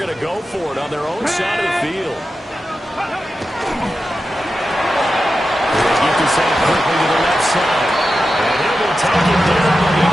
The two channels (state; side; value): normal; both; correlation 0.91